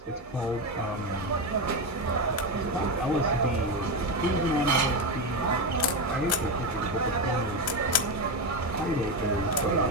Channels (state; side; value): normal; both; correlation 0.13